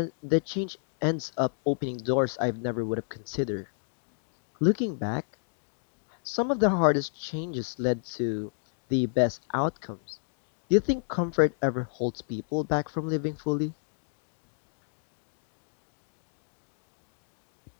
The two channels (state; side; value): silent; right; digital silence